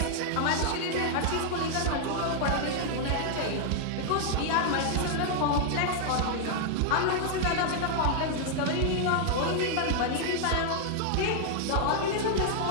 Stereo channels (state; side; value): different; both; correlation 0.00